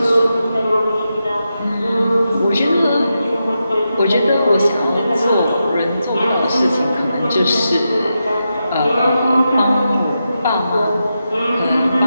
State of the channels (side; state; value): both; inverted; correlation -0.88